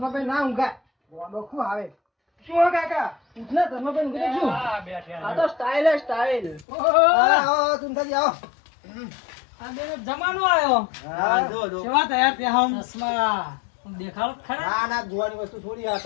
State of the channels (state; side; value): drops out; right; at 6.7 s